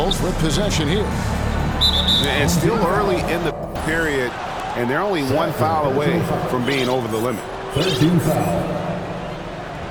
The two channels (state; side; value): identical; both; correlation 1.00